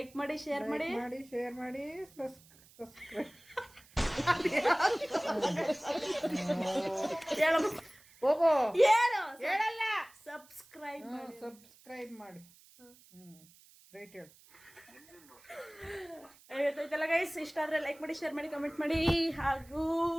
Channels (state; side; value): noise; right; hiss, 26 dB below the sound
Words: ಮಾಡಿ, ಶೇರ್ ಮಾಡಿ, ಶೇರ್ ಮಾಡಿ, ಸಬ್ಸ್ಕ್ರೈಬ್ ಹೇಳಮ್ಮ. ಹೋಗೋ ಹೇಳು, ಹೇಳಲ್ಲ. ಸಬ್ಸ್ಕ್ರೈಬ್ ಮಾಡಿ. ರೈಟ್ ಹೇಳು. ಗೊತ್ತಾಯ್ತಲ್ಲ ಗೈಸ್. ಇಷ್ಟ ಆದ್ರೆ ಲೈಕ್ ಮಾಡಿ, ಶೇರ್ ಮಾಡಿ, ಕಮೆಂಟ್ ಮಾಡಿ, ಹಾಗೂ